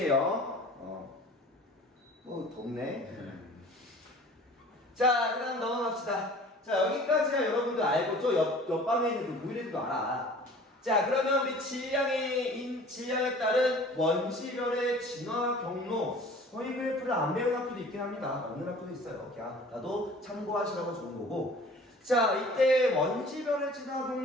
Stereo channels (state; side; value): normal; both; correlation 0.46